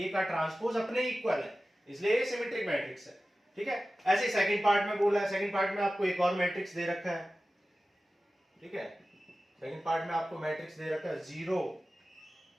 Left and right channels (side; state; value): both; normal; correlation 0.95